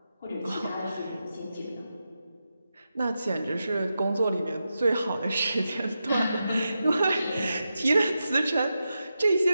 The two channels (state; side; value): inverted; both; correlation -0.89